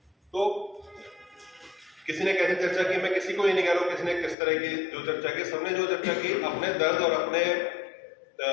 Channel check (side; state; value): right; drops out; at 4.4 s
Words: तो किसी ने कैसी चर्चा की, मैं किसी को ये नहीं कह रहा हूँ किसी ने किस तरह की जो चर्चा की, सबने जो चर्चा की अपने दर्द और अपने